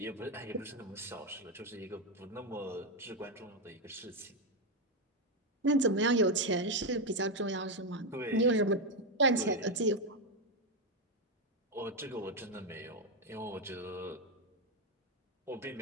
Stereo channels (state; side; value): normal; both; correlation 0.06